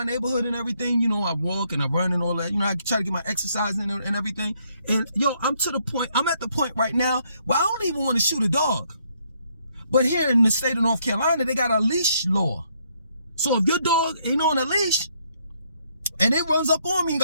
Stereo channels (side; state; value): both; inverted; correlation -0.71